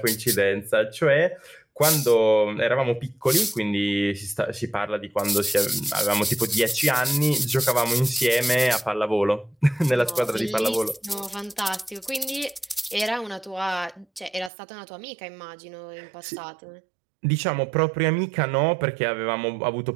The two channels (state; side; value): drops out; left; at 14.5 s